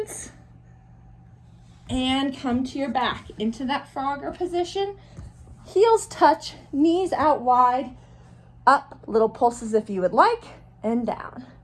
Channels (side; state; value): both; identical; correlation 1.00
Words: and come to your back into that frogger position. Heels touch, knees out wide, up, little pulses if you would like, and down.